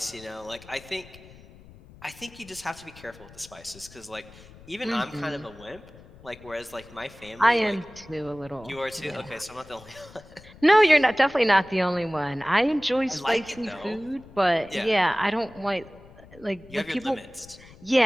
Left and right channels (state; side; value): noise; left; rumble, 21 dB below the sound